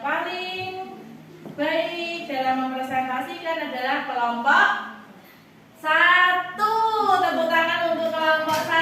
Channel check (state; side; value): identical; both; correlation 1.00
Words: baik dalam mempresentasikan adalah kelompok 1. Tepuk tangan untuk kelompok